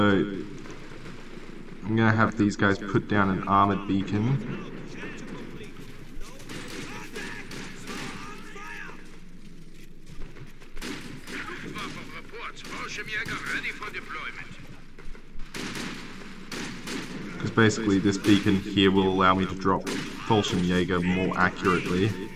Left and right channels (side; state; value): both; identical; correlation 1.00